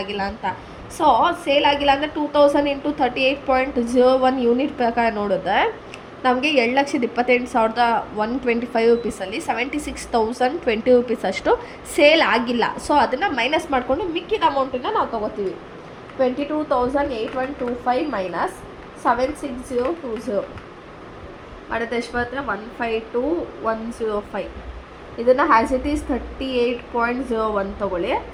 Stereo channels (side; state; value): both; identical; correlation 1.00